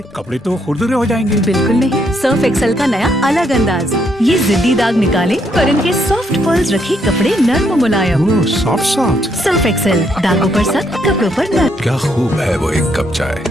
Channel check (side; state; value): both; normal; correlation 0.74